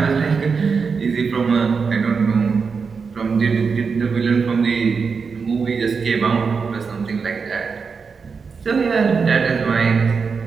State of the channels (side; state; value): left; quieter; 5.3 dB